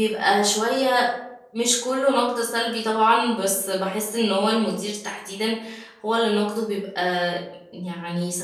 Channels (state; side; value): identical; both; correlation 1.00